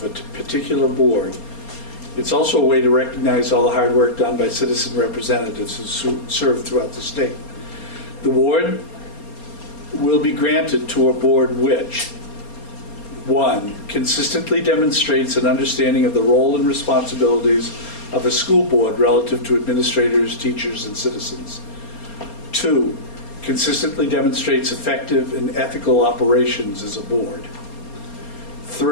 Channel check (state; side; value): late; right; 4.3 ms